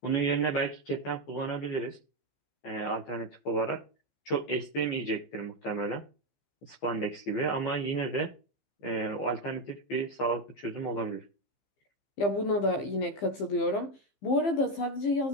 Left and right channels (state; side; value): late; right; 15 ms